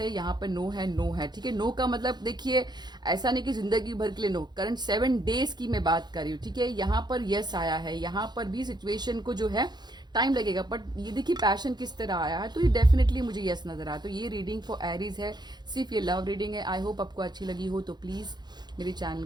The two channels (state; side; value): late; left; 0.21 ms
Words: यहाँ पे नो है, ठीक है। नो का मतलब देखिए ऐसा नहीं कि जिंदगी भर के लिए नो, करंट 7 डेज की मैं बात कर रही हूँ, ठीक है। यहाँ पर यस आया है, यहाँ पर भी सिचुएशन को जो है टाइम लगेगा, बट ये देखिए पैशन किस तरह आया है, तो ये डेफिनेटली मुझे यस नजर आया। तो ये रीडिंग फॉर एरीज है, सिर्फ ये लव रीडिंग है। आई होप आपको अच्छी लगी हो, तो प्लीज मेरे चैनल